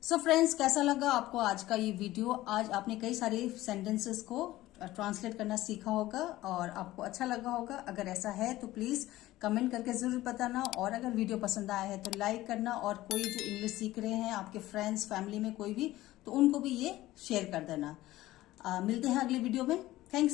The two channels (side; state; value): right; quieter; 16.4 dB